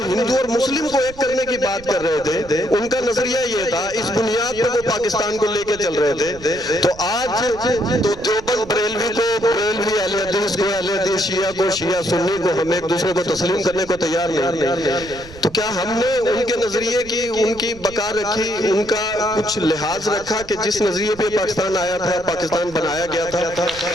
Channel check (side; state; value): right; noise; rumble, 18 dB below the sound